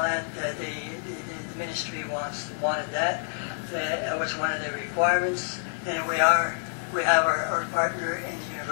that. The ministry wanted that. That was one of the requirements. And we have our partner in the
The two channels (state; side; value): silent; right; 60 dB below the other